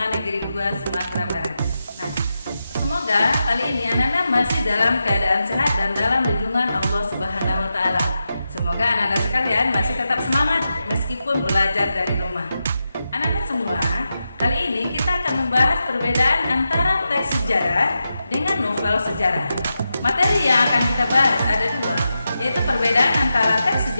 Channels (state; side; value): inverted; both; correlation -0.88